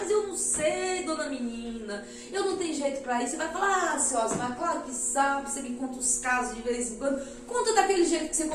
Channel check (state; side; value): identical; both; correlation 1.00